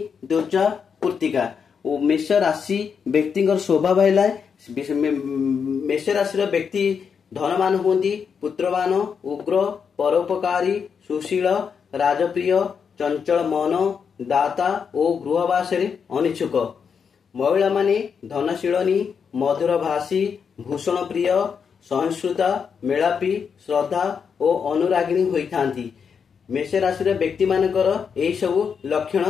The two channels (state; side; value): quieter; right; 6.5 dB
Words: द्विजा कृत्तिका और मेष राशि व्यक्ति स्वभाव है मेष राशि व्यक्ति धनवान होती पुत्रवान उग्र परोपकारी सुशील राजप्रिय चंचल मन दाता और गृहवास अनिच्छुक महिला माने धनशीलनी मधुर भाषी भूषण प्रिय सहिष्णुता मेलापी श्रद्धा और अनुरागिणी होइथांती। मेष राशि व्यक्ति मानकर यही सबु